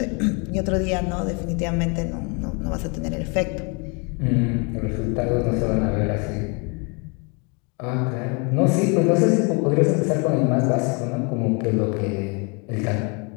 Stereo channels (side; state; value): right; quieter; 33.2 dB